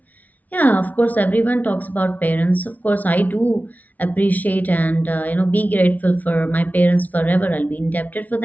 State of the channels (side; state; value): right; late; 0.075 ms